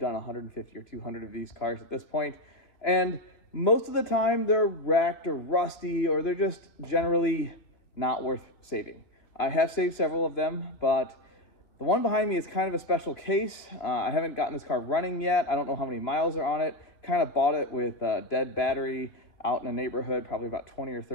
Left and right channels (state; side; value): late; right; 2.5 ms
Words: 150 or 200 of these cars at this point. And most of the time they're wrecked or rusty, or they're just generally not worth saving. I have saved several of them, but the one behind me is kind of a special case. I haven't gotten this car running yet. I don't know how many miles are on it. Kind of bought it with a dead battery out in a neighborhood, probably about 20 or